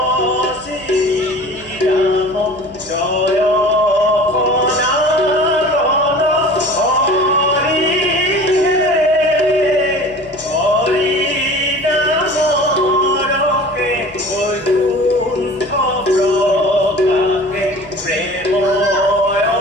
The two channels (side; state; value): left; noise; hum, 24 dB below the sound